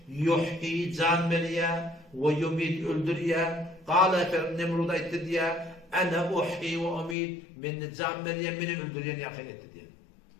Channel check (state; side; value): drops out; right; at 7.2 s